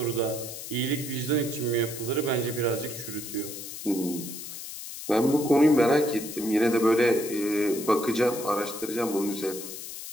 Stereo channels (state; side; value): noise; left; hiss, 10 dB below the sound